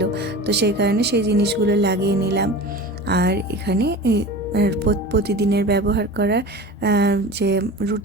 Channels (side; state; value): both; normal; correlation 0.34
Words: তো সেই কারণে সেই জিনিসগুলো লাগিয়ে নিলাম। আর এখানে প্রতিদিনের ব্যবহার করা যে